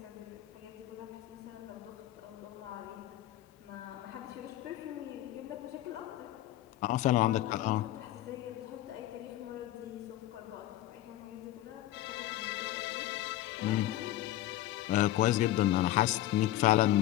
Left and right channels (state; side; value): quieter; right; 14.3 dB